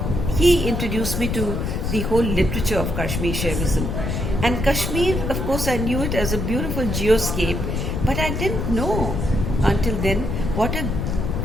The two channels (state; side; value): noise; left; rumble, 1 dB below the sound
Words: he introduced me to the whole literature of Kashmir Shaivism. And Kashmir, of course, I knew it as a beautiful geoscape, but I didn't know until then what a